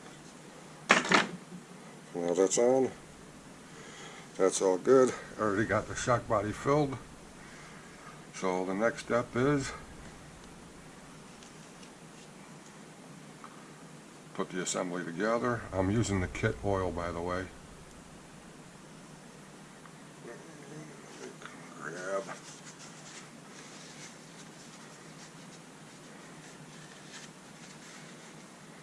Now that's on. That's all good. I already got the shock body filled. So the next step is put the assembly together. I'm using the kit oil, by the way. Grab.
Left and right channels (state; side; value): identical; both; correlation 1.00